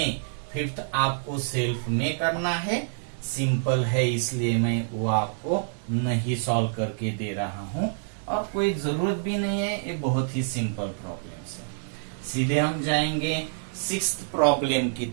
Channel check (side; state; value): left; silent; 60 dB below the other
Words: फिफ्थ आपको सेल्फ में करना है, सिंपल है इसलिए मैं वो आपको नहीं सॉल्व करके दे रहा हूं और कोई जरूरत भी नहीं है, ये बहुत ही सिंपल प्रॉब्लम है। सीधे हम जाएंगे सिक्स्थ प्रॉब्लम की